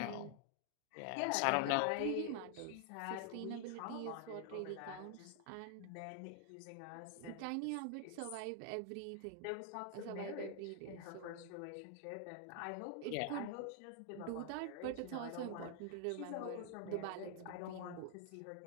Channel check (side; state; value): both; different; correlation 0.00